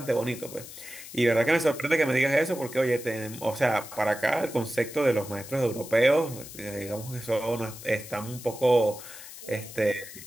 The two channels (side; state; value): left; noise; hiss, 14 dB below the sound